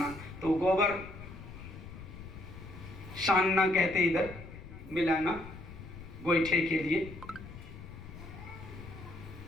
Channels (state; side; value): noise; left; rumble, 14 dB below the sound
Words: तो गोबर शानना कहते इधर मिलाना गोईठे के लिए।